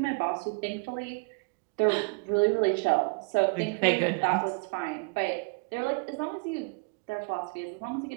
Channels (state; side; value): quieter; left; 31.8 dB